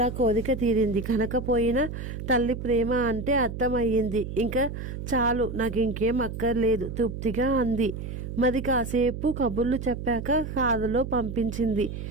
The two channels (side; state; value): right; noise; hum, 7 dB below the sound